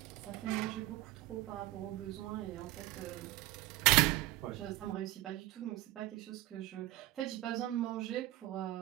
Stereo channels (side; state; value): left; quieter; 17.4 dB